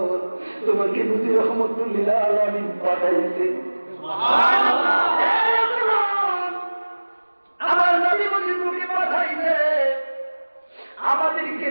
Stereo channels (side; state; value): both; inverted; correlation -1.00